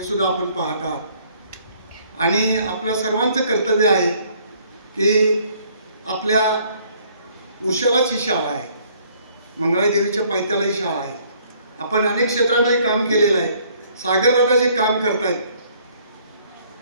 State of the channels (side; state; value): both; inverted; correlation -0.62